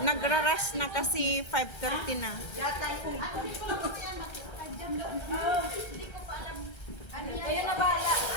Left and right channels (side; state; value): right; late; 1.3 ms